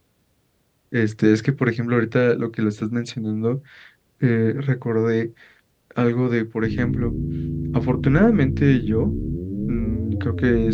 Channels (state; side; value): identical; both; correlation 1.00